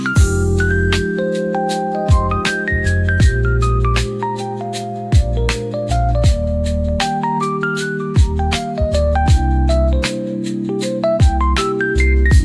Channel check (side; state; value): both; identical; correlation 1.00